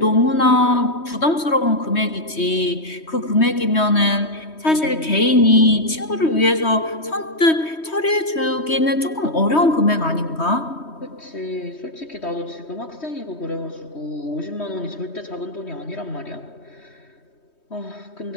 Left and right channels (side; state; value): right; late; 3.2 ms